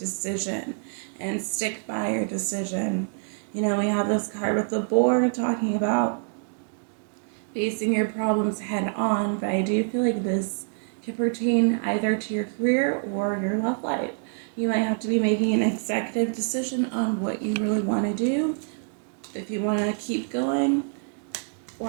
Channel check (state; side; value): silent; left; 61 dB below the other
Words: and stick by your decision. We have this card with the boar talking about facing your problems head on, but I do feel like this could pertain either to your career or your love life. You might have to be making an executive decision on what you really want to do, if you want to keep going